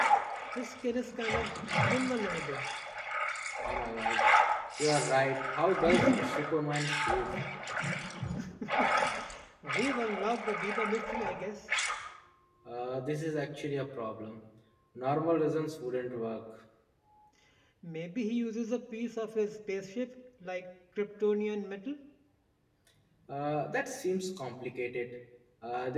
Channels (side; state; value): both; identical; correlation 1.00